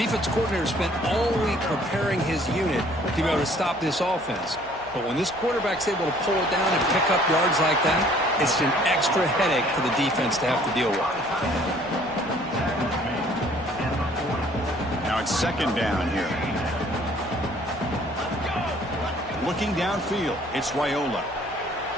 coordinator spent all week preparing his unit to be able to stop this offense. But when this quarterback's able to pull it down and pick up yards like that, it's an extra headache for the defense to have to deal with. Now it's 2nd down here. Looking downfield, it's Raiola.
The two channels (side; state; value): left; noise; hum, 23 dB below the sound